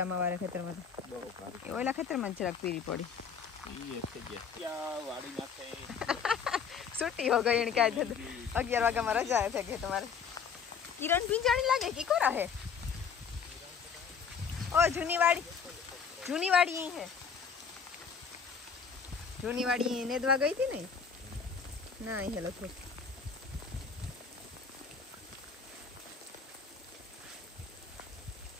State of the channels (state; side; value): quieter; right; 6.3 dB